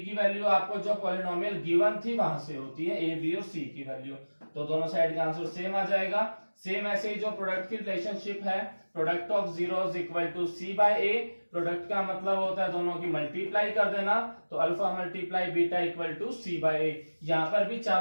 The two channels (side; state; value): both; inverted; correlation -1.00